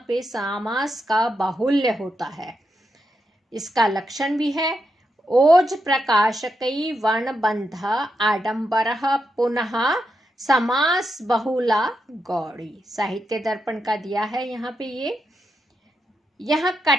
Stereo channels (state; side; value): normal; both; correlation 0.84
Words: पे समास का बाहुल्य होता है। इसका लक्षण भी है ओज प्रकाशकई वर्ण बंध आडंबर पुनः समास बहुला गौड़ी। साहित्य दर्पण का दिया है यहाँ पे। यह